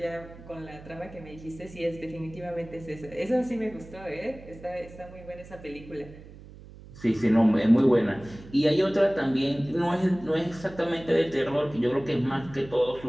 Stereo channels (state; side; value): noise; right; hum, 18 dB below the sound